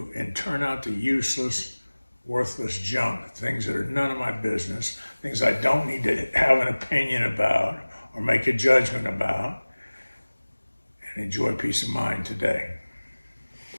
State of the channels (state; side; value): inverted; both; correlation -1.00